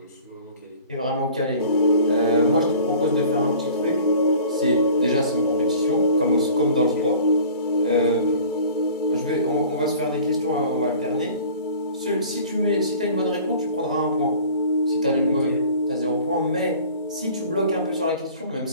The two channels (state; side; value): inverted; both; correlation -0.45